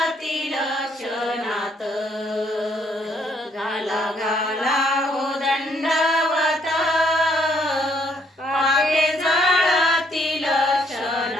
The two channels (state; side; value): normal; both; correlation 0.69